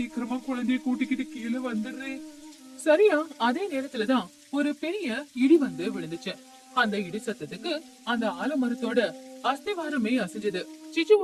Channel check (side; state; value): both; identical; correlation 1.00